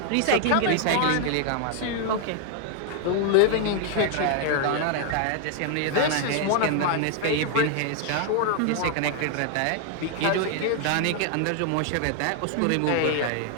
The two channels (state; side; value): different; both; correlation 0.00